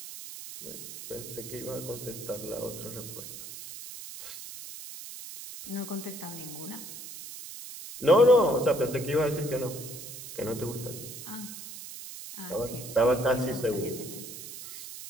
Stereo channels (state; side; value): noise; right; hiss, 11 dB below the sound